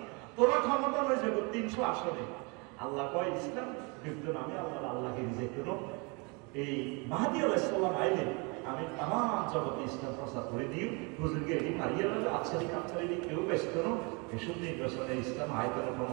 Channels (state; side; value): quieter; left; 31.0 dB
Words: তোরা ক্ষমতা হয়ে যাবে 300 আসনে আল্লাহ কয় ইসলাম বিদ্যুৎ আমি আল্লাহকে রিজেক্ট করব এই মাহদী আলাইহিস সালাম আইলে আমি তামাম জগতে ইসলাম প্রচার করে দিই হুজুরকে এটি মারিয়ে দেবে আচ্ছারি কাচ্ছারি কেউ ব্যস্ত করো এসব নির্বাচনে ইসলাম আয়তন